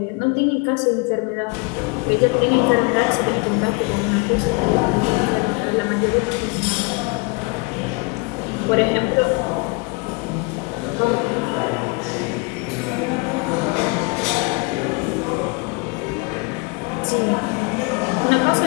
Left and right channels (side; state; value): right; quieter; 29.3 dB